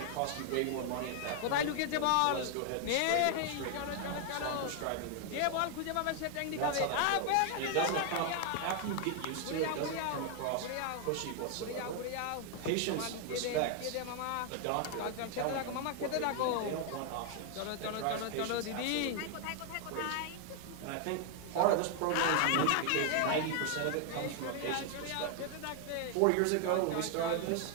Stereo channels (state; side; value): different; both; correlation 0.00